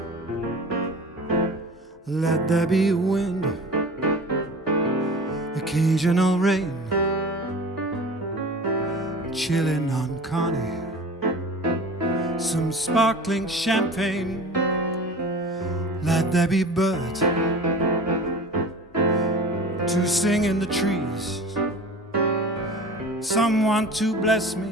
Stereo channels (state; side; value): normal; both; correlation 0.38